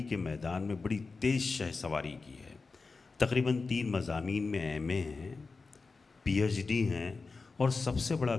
के मैदान में बड़ी तेज़ शहसवारी की है। तकरीबन 3 मज़ामीन में एमए हैं, पीएचडी हैं, और सबसे बड़ा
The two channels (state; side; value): quieter; right; 4.2 dB